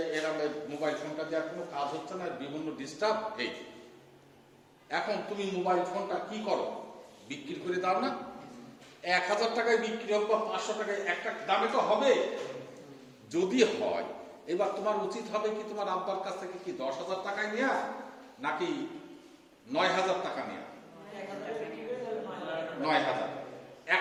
এরকম মোবাইল ফোনটা দেওয়ার কোনো কাজ হচ্ছে না, বিভিন্ন ডিস্টার্ব এই। এখন তুমি মোবাইল ফোনটা কি করো, বিক্রি করে দাও না? 1,000 টাকায় বিক্রি হোক বা 500 টাকায়, একটা দামে তো হবে। যদি হয়, এবার তোমার উচিত হবে কি তোমার আব্বার কাছ থেকে কি 10,000 টাকায় নেওয়া নাকি 9,000 টাকা নেওয়া? 9,000।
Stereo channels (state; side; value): identical; both; correlation 1.00